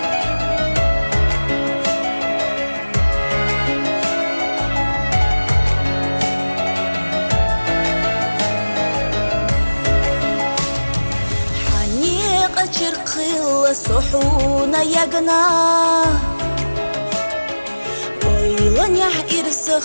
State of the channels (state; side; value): inverted; both; correlation -1.00